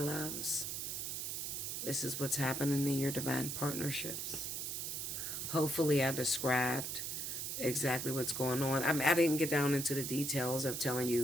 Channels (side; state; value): right; noise; hiss, 3 dB below the sound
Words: This is what's happening in your divine partnerships. Hopefully I described exactly what's going on. I didn't get down into the details of telling